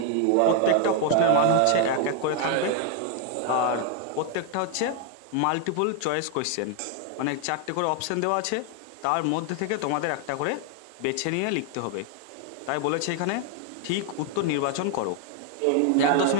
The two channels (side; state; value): both; different; correlation 0.01